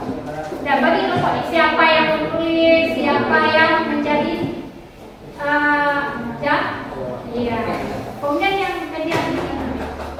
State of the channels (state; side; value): identical; both; correlation 1.00